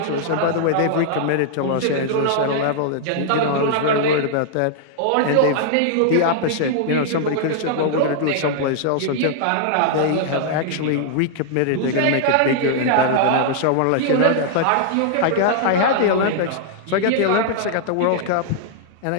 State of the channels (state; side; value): different; both; correlation -0.01